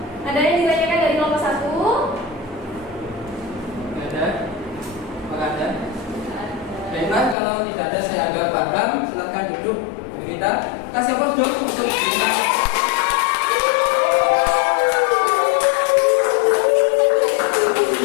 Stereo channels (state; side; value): drops out; right; at 7.4 s